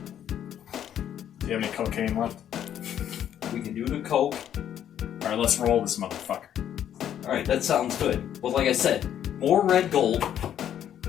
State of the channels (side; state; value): right; quieter; 10.2 dB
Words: you have any cocaine left? We can do the coke. Alright, let's roll this motherfucker. Alright, that sounds good. But like I said, more red gold.